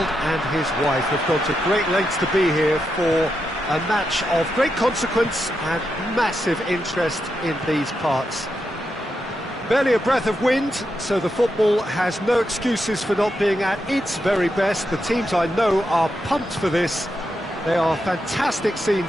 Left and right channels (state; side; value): normal; both; correlation 0.85